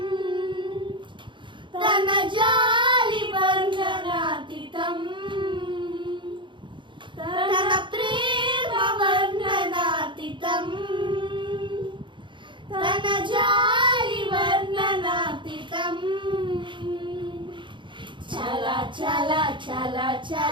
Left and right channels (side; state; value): left; late; 0.23 ms